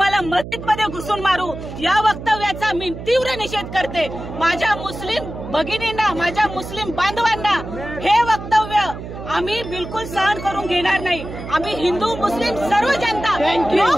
मस्जिदमध्ये घुसून मारू, या वक्तव्याचा मी तीव्र निषेध करते. माझ्या मुस्लिम भगिनींना, माझ्या मुस्लिम बांधवांना हे वक्तव्य आम्ही बिलकुल सहन करून घेणार नाही. आम्ही हिंदू मुस्लिम सर्व जनता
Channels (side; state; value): right; noise; hum, 10 dB below the sound